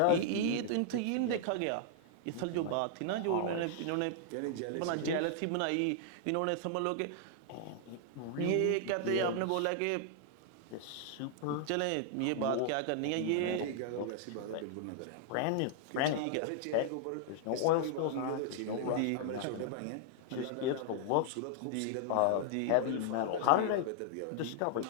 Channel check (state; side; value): different; both; correlation -0.01